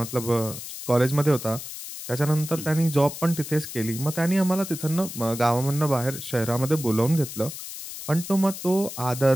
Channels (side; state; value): left; noise; hiss, 10 dB below the sound